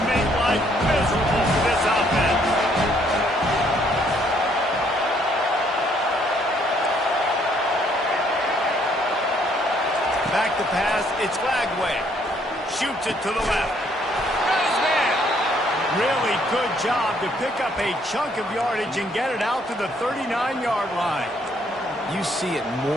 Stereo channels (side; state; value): both; normal; correlation 0.67